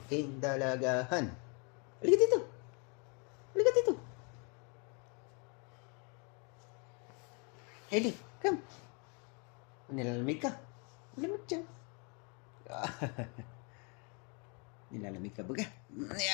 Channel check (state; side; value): quieter; right; 34.2 dB